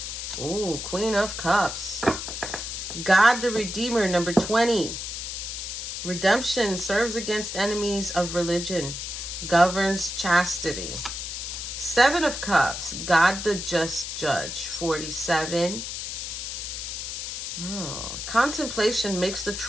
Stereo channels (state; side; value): noise; left; hiss, 6 dB below the sound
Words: Ooh, Queen of Cups. God the Redeemer, number 20. Redemption serves against enemies of religion, governs chastity. 7 of Cups, God the Just Judge, 47. Oh, contemplation makes the